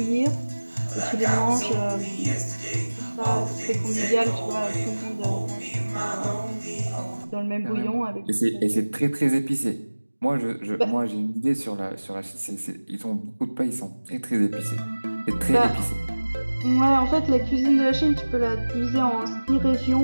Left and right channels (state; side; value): inverted; both; correlation -1.00